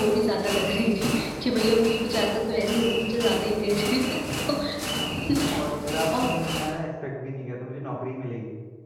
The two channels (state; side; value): identical; both; correlation 1.00